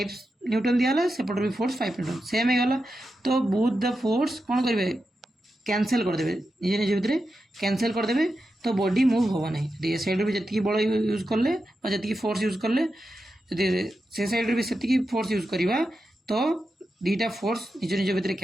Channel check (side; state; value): both; normal; correlation 0.89